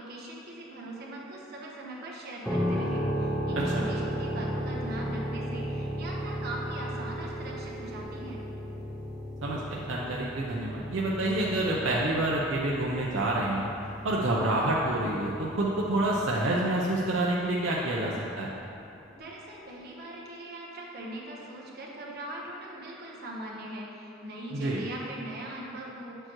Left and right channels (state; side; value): normal; both; correlation 0.49